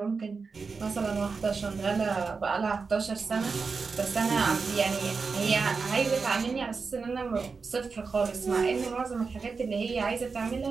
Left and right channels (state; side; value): quieter; left; 4.8 dB